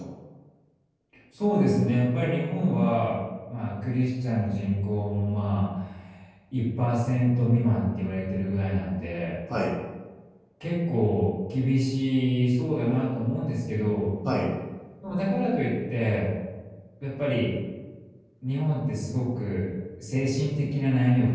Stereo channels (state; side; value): identical; both; correlation 1.00